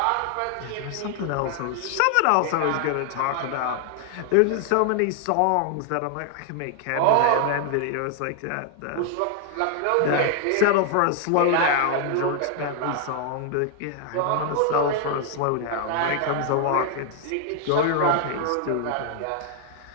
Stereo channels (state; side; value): different; both; correlation 0.00